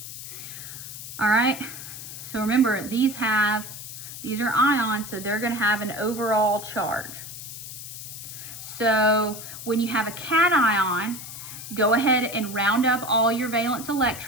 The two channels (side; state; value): left; noise; hiss, 11 dB below the sound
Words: All right, so remember, these are ions, so they're gonna have an overall charge. So when you have a cation, go ahead and round up all your valence